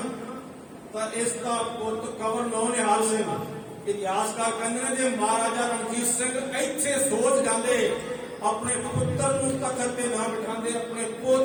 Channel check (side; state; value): both; identical; correlation 1.00